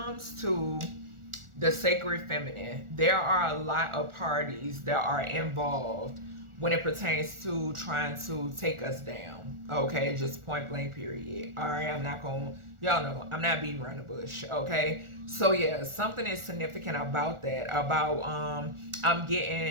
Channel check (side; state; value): left; late; 1.4 ms